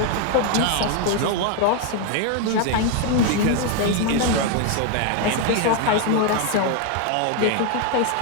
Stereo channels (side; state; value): both; different; correlation 0.01